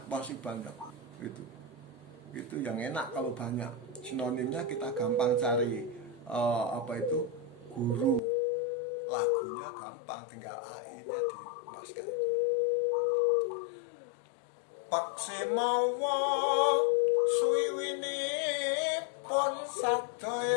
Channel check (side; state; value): right; drops out; at 8.2 s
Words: pasti banyak. Itu yang enak kalau banyak sinonimnya, kita gampang cari guru lagunya gampang, tinggal AI-nya dimasukkan itu. Paksi mawa suwiwinipun